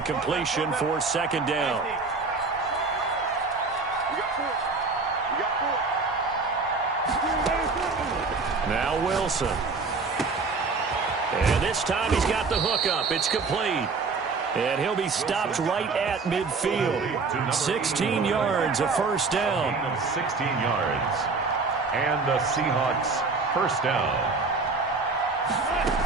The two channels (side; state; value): left; quieter; 4.2 dB